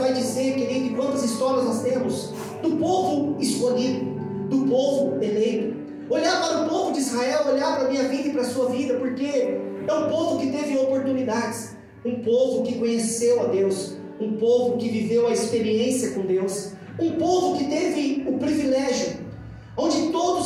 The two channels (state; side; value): identical; both; correlation 1.00